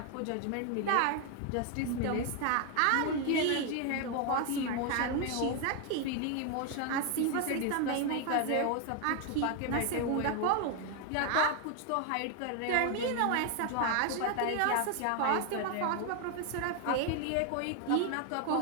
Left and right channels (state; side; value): different; both; correlation 0.01